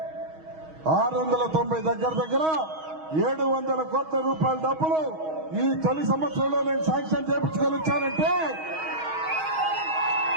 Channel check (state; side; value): late; left; 6.3 ms